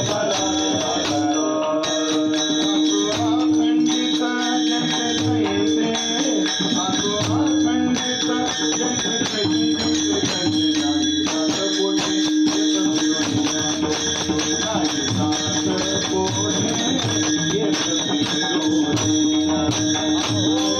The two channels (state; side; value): identical; both; correlation 1.00